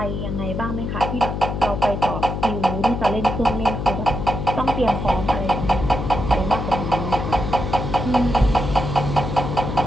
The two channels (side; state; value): left; noise; hum, 3 dB below the sound